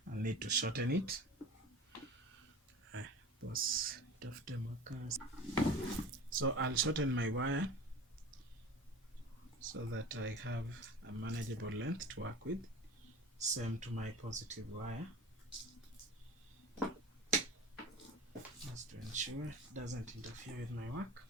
need to shorten it. So I'll shorten my wire so that I have a manageable length to work with. Same to my positive wire, just to ensure it doesn't interfere with my work.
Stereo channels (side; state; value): both; normal; correlation 0.37